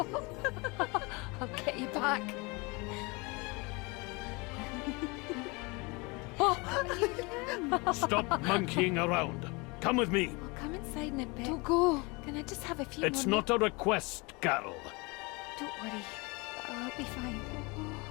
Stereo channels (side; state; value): right; quieter; 27.2 dB